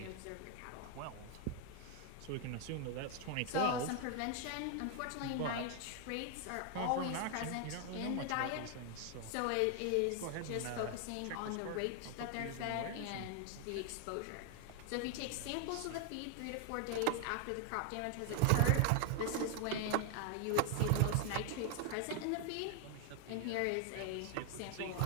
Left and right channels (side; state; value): both; different; correlation 0.00